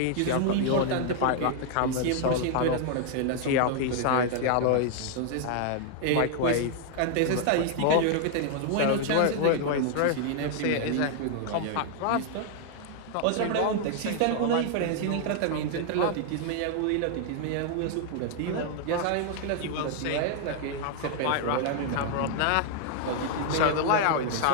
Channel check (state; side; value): different; both; correlation 0.00